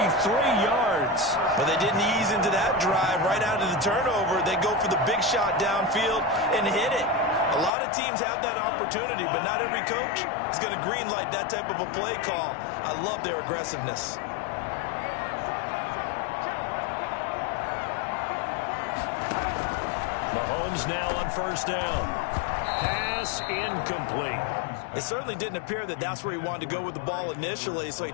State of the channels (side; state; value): right; drops out; at 7.7 s